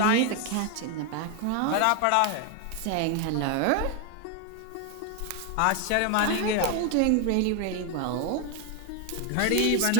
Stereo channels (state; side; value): different; both; correlation 0.01